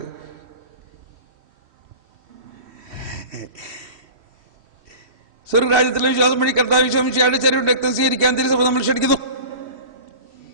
സ്വർഗരാജ്യത്തിലെ വിശ്വാസം വഴി കർത്താവ് വിശ്വസിച്ചയാളുടെ ശരീരം രക്തം സ്വീകരിക്കാൻ തിരുസഭ നമ്മൾ ക്ഷണിക്കുന്നു.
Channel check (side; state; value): left; late; 3.1 ms